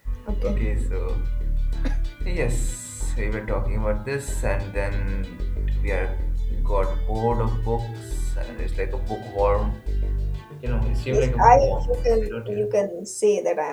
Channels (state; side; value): identical; both; correlation 1.00